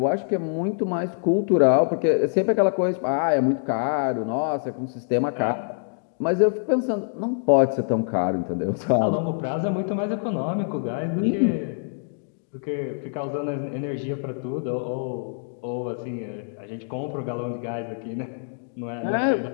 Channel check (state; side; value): silent; right; digital silence